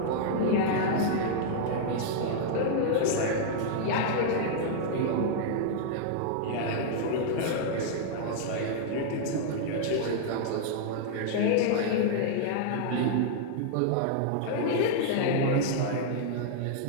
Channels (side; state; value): both; different; correlation -0.01